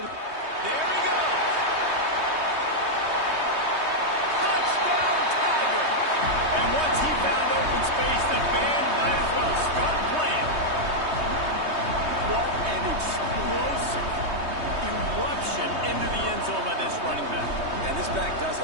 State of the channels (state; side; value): late; left; 3.2 ms